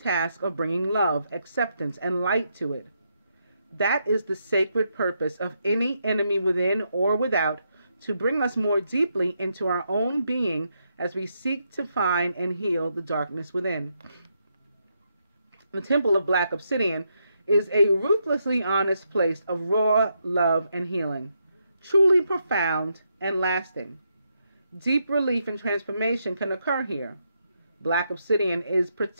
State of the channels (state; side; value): inverted; both; correlation -0.80